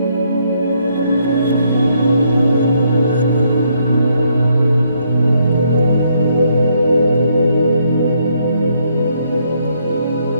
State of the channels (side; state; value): both; inverted; correlation -0.72